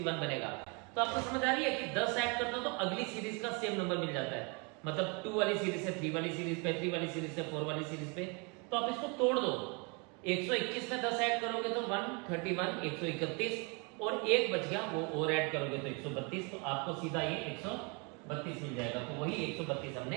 बनेगा। तो आपको समझ आ रही है कि 10 ऐड करते हो तो अगली सीरीज का सेम नंबर मिल जाता है, मतलब 2 वाली सीरीज से 3 वाली सीरीज पे, 3 वाली सीरीज से 4 वाली सीरीज पे। तो आप इसको तोड़ दो, 121 में 10 ऐड करोगे तो 131, 131 और एक बच गया वो और ऐड करोगे तो 132, तो आपको सीधा ये 132 मिल जाएगा। तो वही 132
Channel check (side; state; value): left; quieter; 32.2 dB